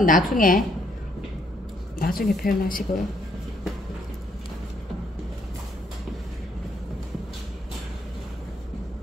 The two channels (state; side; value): normal; both; correlation 0.71